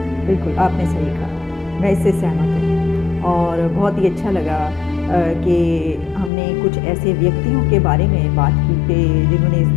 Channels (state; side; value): drops out; right; at 6.3 s